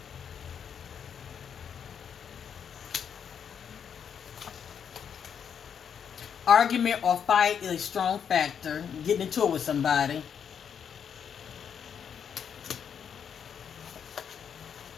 Argument or fight is a strong factor. Getting into it with somebody.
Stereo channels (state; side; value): quieter; right; 7.7 dB